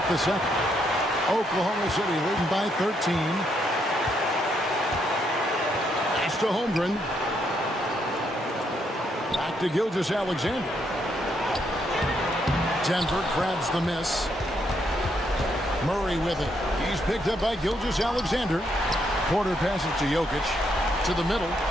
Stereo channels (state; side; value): normal; both; correlation 0.75